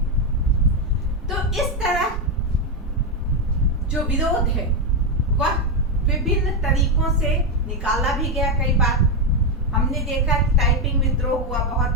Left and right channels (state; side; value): normal; both; correlation 0.06